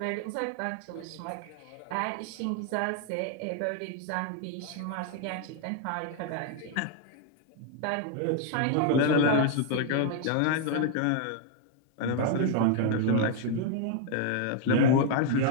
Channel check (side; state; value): both; different; correlation 0.00